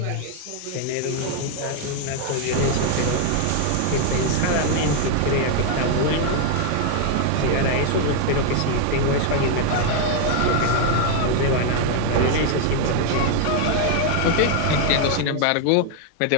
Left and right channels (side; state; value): both; different; correlation 0.00